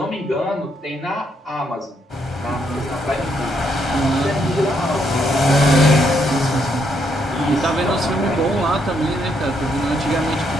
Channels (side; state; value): both; normal; correlation 0.74